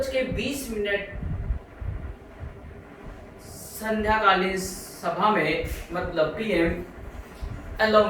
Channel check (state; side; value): identical; both; correlation 1.00